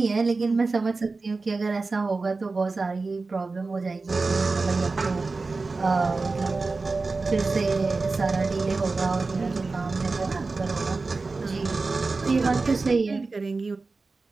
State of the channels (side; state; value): left; quieter; 3.9 dB